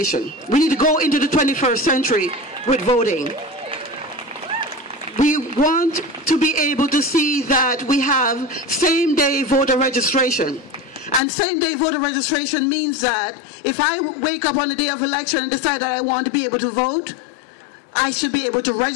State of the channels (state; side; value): drops out; right; at 11.2 s